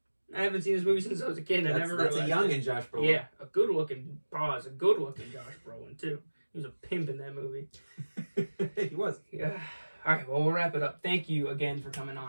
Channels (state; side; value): inverted; both; correlation -1.00